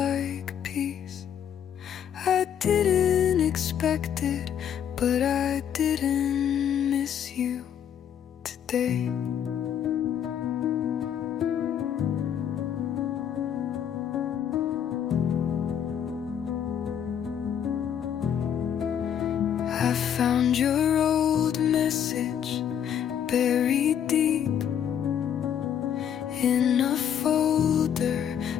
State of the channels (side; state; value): right; quieter; 9.0 dB